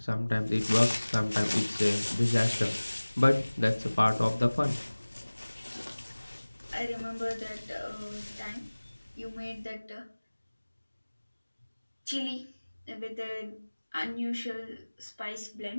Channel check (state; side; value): inverted; both; correlation -1.00